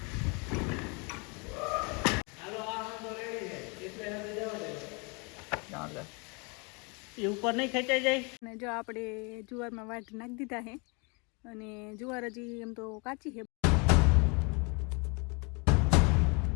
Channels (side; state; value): right; quieter; 31.7 dB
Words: એ ઉપર નહીં ખેંચાઈ જાય. અને જો આપણે જુવારમાં વાટ નાખી દીધા છે અને જુવાર હજી એમ તો કાચી છે.